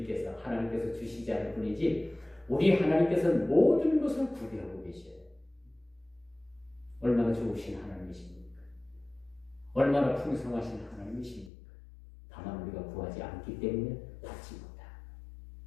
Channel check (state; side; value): drops out; right; at 11.5 s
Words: 하나님께서 주시지 않을 뿐이지, 우리 하나님께서는 모든 것을 구비하고 계셔요. 얼마나 좋으신 하나님이십니까? 얼마나 풍성하신 하나님이십니까? 다만 우리가 구하지 않기 때문에 받지 못합니다.